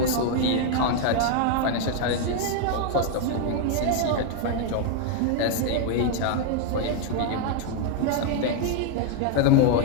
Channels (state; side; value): different; both; correlation 0.00